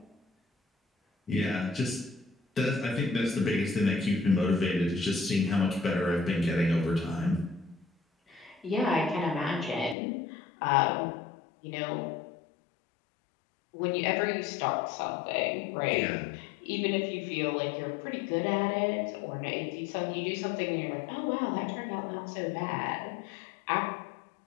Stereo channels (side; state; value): right; drops out; at 10.0 s